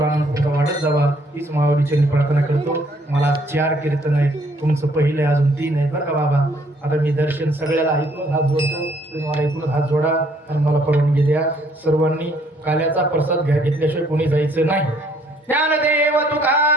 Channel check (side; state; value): both; normal; correlation 0.65